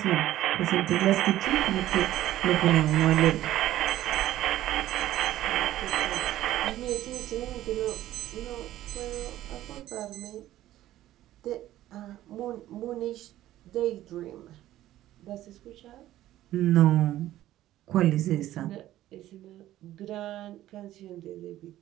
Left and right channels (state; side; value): quieter; left; 14.0 dB